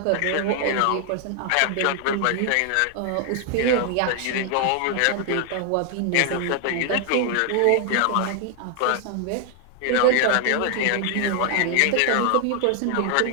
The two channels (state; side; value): different; both; correlation 0.00